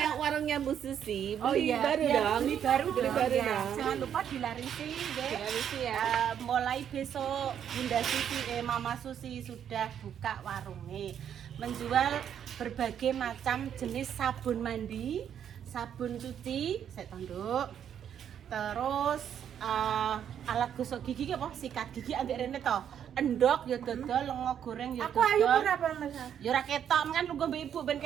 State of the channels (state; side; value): quieter; left; 9.0 dB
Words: warungnya Bu Susi. Beli baru dong. Beli baru dong. Jangan lupa dilarisi, Dek. Dilarisi ya. Mulai besok Bunda Susi, Mama Susi sudah buka warungnya. Menjual berbagai macam jenis sabun mandi, sabun cuci, saya tanduk. Terus alat gosok gigi apa? Sikat gigi ambek rene to. Endok ya dodol, lengo goreng ya dodol. Aku ayu berapa, Mas? Ya ora ketok, kan lugu mbek ibu ben